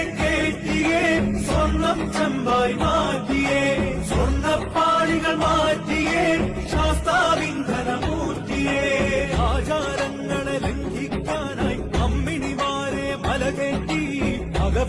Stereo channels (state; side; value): identical; both; correlation 1.00